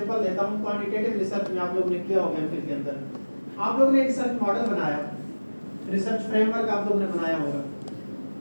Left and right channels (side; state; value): both; inverted; correlation -1.00